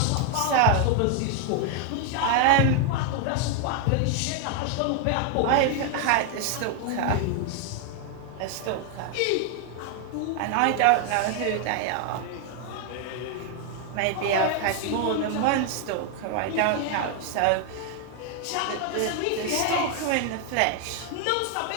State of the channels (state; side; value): different; both; correlation 0.00